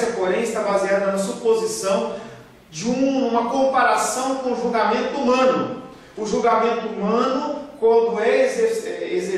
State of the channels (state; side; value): identical; both; correlation 1.00